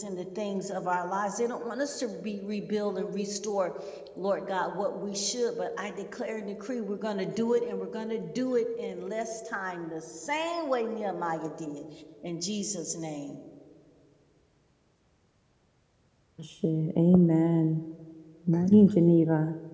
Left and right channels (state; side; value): identical; both; correlation 1.00